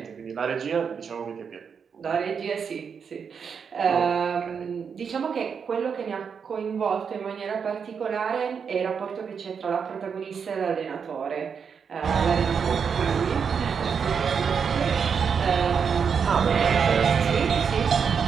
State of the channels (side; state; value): left; quieter; 6.5 dB